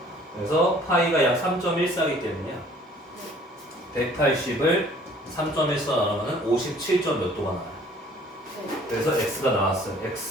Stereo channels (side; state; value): both; normal; correlation 0.54